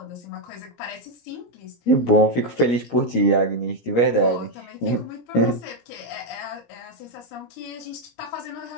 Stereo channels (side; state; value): right; late; 17 ms